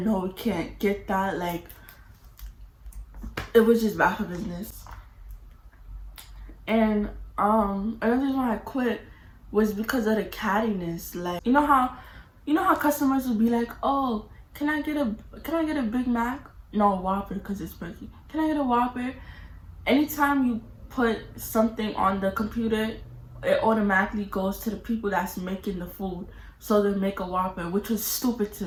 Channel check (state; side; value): identical; both; correlation 1.00